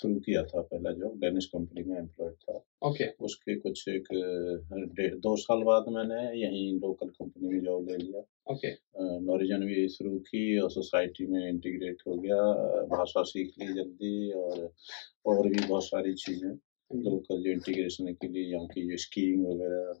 किया था, पहला जॉब डेनिश कंपनी में एम्प्लॉयड था। ओके। उसके कुछ एक 2 साल बाद मैंने यहीं लोकल कंपनी में जॉब ले लिया। ओके। नॉरिजन भी शुरू की और सोसाइटी में इंटीग्रेट हो गया। भाषा सीख ली जल्दी, और भी बहुत सारी चीज़ें लोकल जो इंटीग्रेशन के लिए, यहाँ की जो स्कीइंग वगैरह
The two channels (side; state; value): right; silent; digital silence